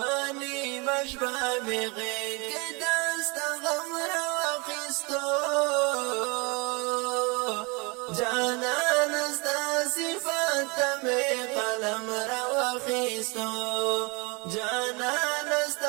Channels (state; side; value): quieter; left; 29.0 dB